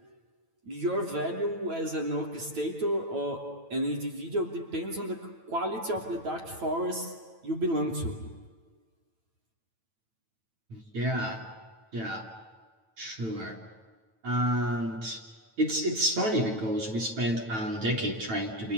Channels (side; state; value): left; late; 9.1 ms